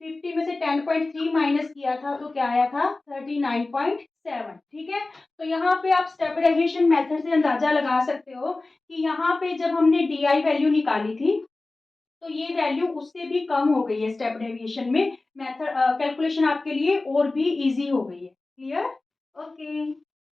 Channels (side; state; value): right; quieter; 3.2 dB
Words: 50 में से 10.3 माइनस किया था तो क्या आया था 39.7, ठीक है। तो यहाँ पे आप स्टेप डेविएशन मेथड से अंदाजा लगा सकते हो कि यहाँ पे जब हमने डी आई वैल्यू निकाली थी तो ये वैल्यू उससे भी कम हो गई है स्टेप डेविएशन में, मेथड कैलकुलेशन आपके लिए और भी इजी हो गई है। Clear, okay.